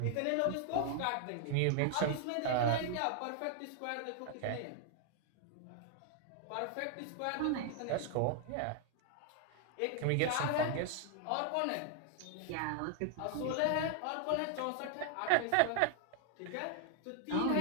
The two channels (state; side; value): different; both; correlation 0.00